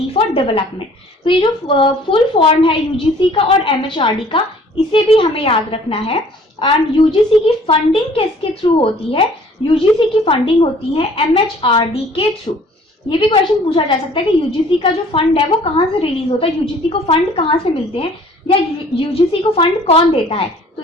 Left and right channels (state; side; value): normal; both; correlation 0.54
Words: for development. तो ये जो full form है UGC का और MHRD का, इसे भी हमें याद रखना है. एंड यूजीसी की फंडिंग किसके थ्रू होती है? यूजीसी की फंडिंग होती है MHRD के थ्रू. ये भी क्वेश्चन पूछा जा सकता है कि यूजीसी का जो फंड है वो कहाँ से रिलीज होता है, यूजीसी को फंड कहाँ से मिलते हैं, या यूजीसी को फंड कौन देता है? तो